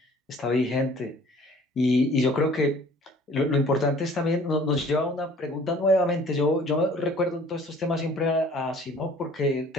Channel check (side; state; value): both; normal; correlation 0.52